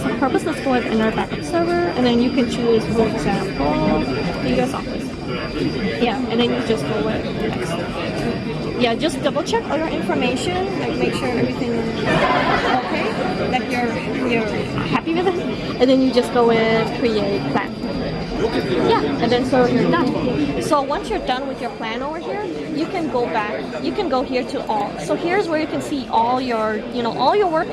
purpose, let's go with another backup server, and then you can choose, for example, the US Office. Yeah, and then you just go with next. Yeah, just double check all your information, like make sure everything is okay, like you're happy with it, and then you just go with create plan. Yeah, and then so you're done. So once you're done with your plan over here, you can go back. You can go here to all. So here's where you can see all your, all your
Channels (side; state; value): both; identical; correlation 1.00